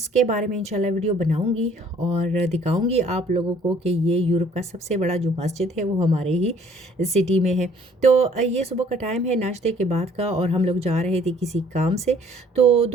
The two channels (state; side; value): normal; both; correlation 0.58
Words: बारे में इंशाल्लाह वीडियो बनाऊंगी और दिखाऊंगी आप लोगों को कि ये यूरोप का सबसे बड़ा जो मस्जिद है वो हमारे ही सिटी में है। तो ये सुबह का टाइम है नाश्ते के बाद का, और हम लोग जा रहे थे किसी काम से। तो